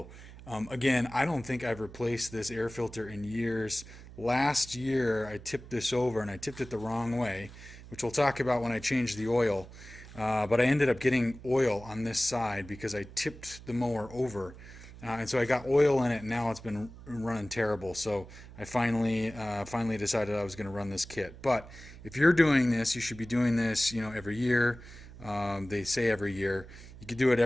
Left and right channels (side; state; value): right; noise; hum, 17 dB below the sound